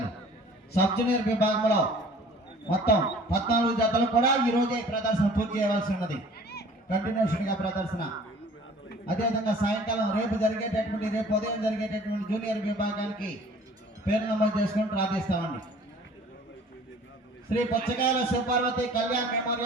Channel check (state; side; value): normal; both; correlation 0.49